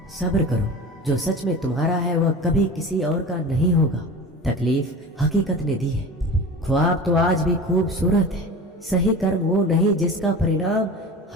सब्र करो। जो सच में तुम्हारा है वह कभी किसी और का नहीं होगा। तकलीफ हकीकत ने दी है। ख्वाब तो आज भी खूबसूरत है। सही कर्म वो नहीं जिसका परिणाम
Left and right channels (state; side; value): normal; both; correlation 0.35